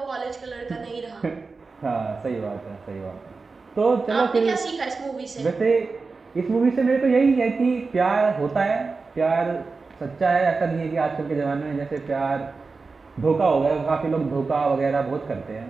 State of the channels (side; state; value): left; quieter; 4.2 dB